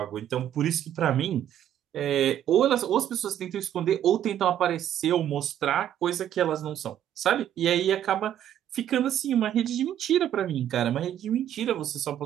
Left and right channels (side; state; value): left; quieter; 10.8 dB